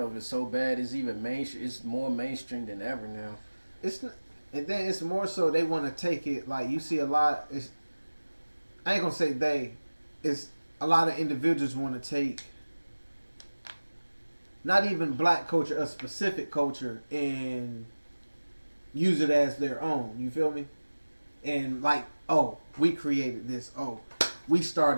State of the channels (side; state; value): both; inverted; correlation -1.00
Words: of it so bad. It's even mainstream. It's more mainstream than ever now. And then it's more so they want to take it like you see a lot. I ain't gonna say they. It's a lot of individuals want to take not even black culture, a specific culture, and use it as their own. You feel me? And like, oh, we created this. Oh, we